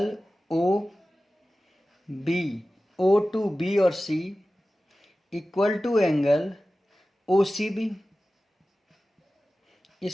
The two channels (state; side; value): normal; both; correlation 0.96